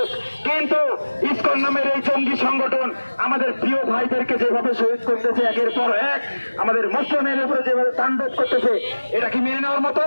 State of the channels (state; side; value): inverted; both; correlation -1.00